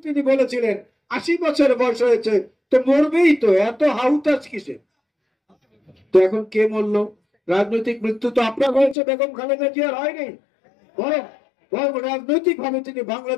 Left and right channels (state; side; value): drops out; right; at 9.0 s